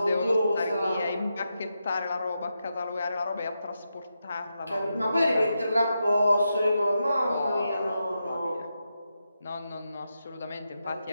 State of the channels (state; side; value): inverted; both; correlation -0.87